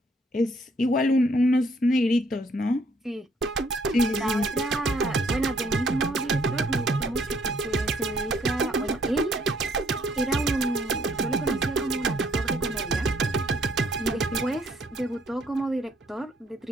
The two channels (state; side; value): normal; both; correlation 0.65